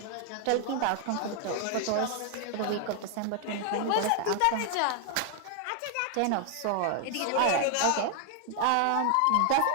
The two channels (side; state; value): both; different; correlation 0.00